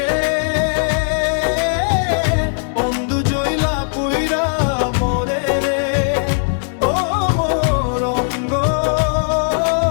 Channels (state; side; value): silent; right; digital silence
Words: অন্ধু জইলা পুইরা মোরে রে, ও মোর অঙ্গ